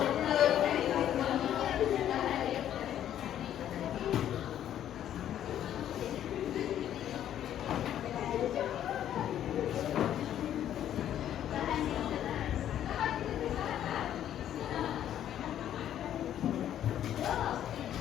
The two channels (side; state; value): right; quieter; 10.9 dB